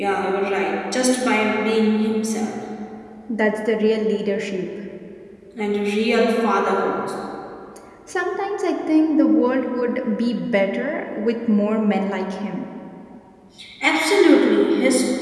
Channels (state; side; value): identical; both; correlation 1.00